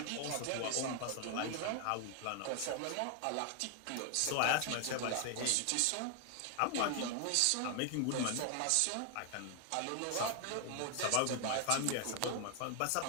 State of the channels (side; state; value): both; different; correlation 0.00